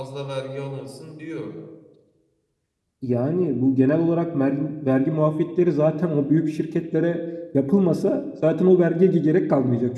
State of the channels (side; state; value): both; identical; correlation 1.00